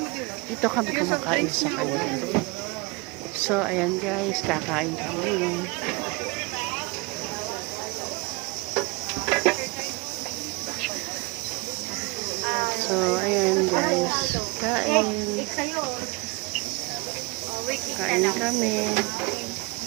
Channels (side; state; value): left; quieter; 26.3 dB